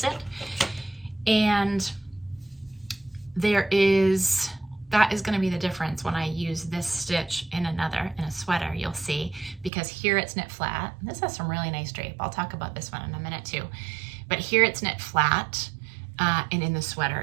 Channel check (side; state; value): left; drops out; at 9.7 s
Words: it. And that is going to be the difference when I use this stitch in a sweater, you'll see, because here it's knit flat. This has some really nice drape. I'll talk about this one in a minute too. But here it's knit flat, and in the